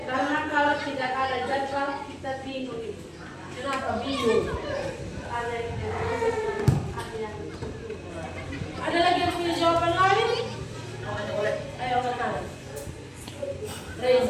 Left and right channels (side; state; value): both; identical; correlation 1.00